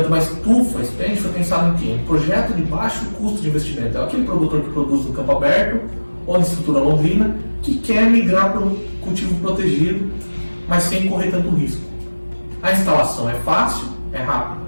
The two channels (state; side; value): inverted; both; correlation -1.00